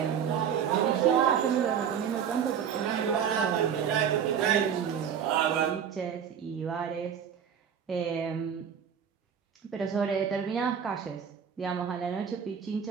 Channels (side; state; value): left; quieter; 8.0 dB